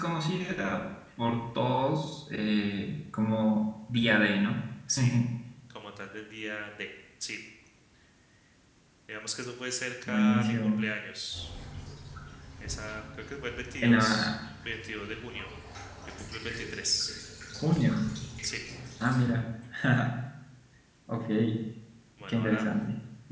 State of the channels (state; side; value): identical; both; correlation 1.00